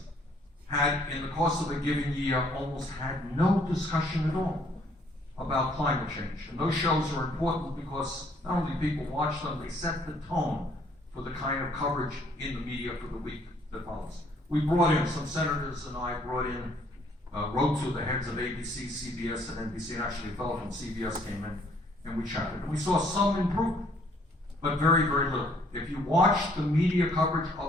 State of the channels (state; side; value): normal; both; correlation 0.64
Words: had, in the course of a given year, almost had no discussion at all about climate change. And those shows are important because not only people watch them, they set the tone for the kind of coverage in the media for the week that follows. We brought in, some senators and I wrote to the heads of ABC, CBS, and NBC, and actually a fellow from CBS came in, and we chatted. And we saw some improvement, but very, very little. If you watch the media coverage